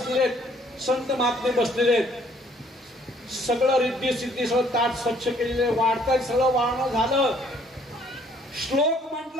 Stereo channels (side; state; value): both; normal; correlation 0.62